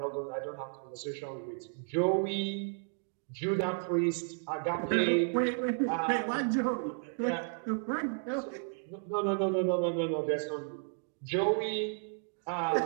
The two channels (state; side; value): silent; left; 56 dB below the other